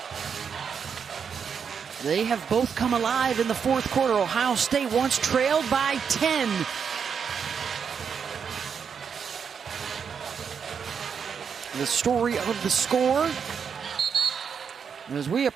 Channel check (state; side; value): quieter; left; 6.8 dB